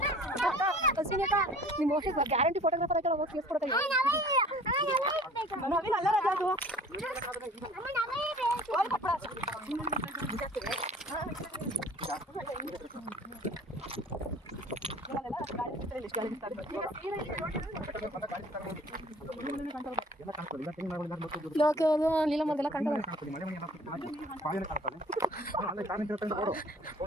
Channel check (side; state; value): both; normal; correlation 0.49